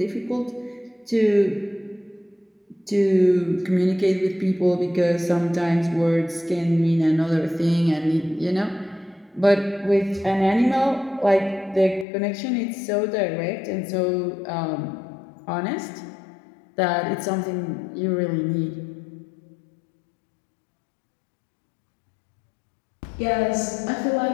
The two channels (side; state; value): right; drops out; at 12.1 s